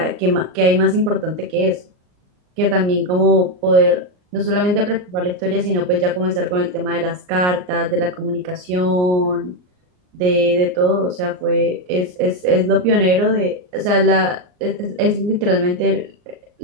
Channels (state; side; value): late; left; 39 ms